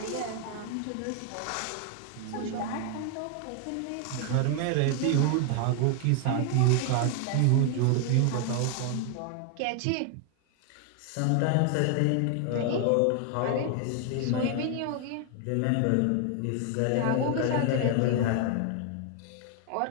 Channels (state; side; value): different; both; correlation 0.01